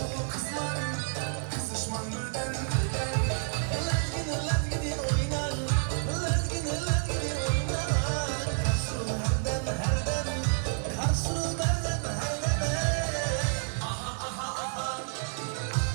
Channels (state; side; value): silent; left; 58 dB below the other